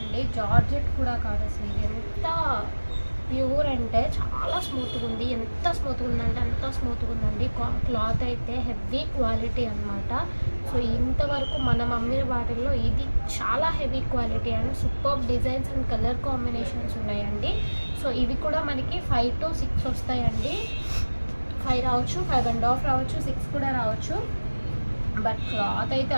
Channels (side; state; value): both; inverted; correlation -1.00